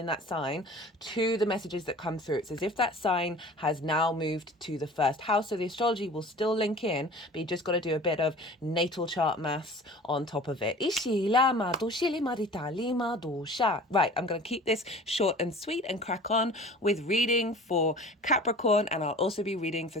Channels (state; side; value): normal; both; correlation 0.43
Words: that sign to the messages that come through. It's as if that sign has now moved to the first house. So the astrology will still link in, but you just got to do a bit of natal chart maths on top of it. Right, I'm going to keep this short and sweet and crack on with reading for Capricorn, and I'll also be reading for